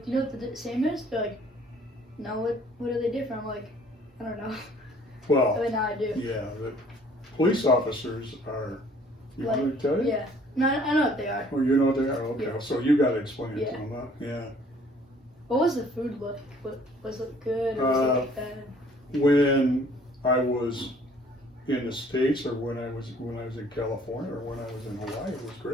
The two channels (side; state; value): both; normal; correlation 0.57